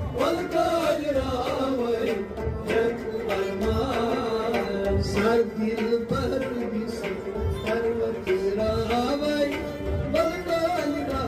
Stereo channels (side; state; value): both; identical; correlation 1.00